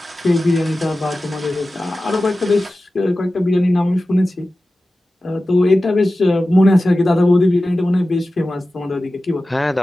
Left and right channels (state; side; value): normal; both; correlation 0.95